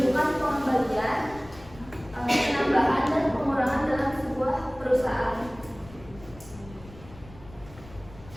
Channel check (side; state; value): left; noise; rumble, 19 dB below the sound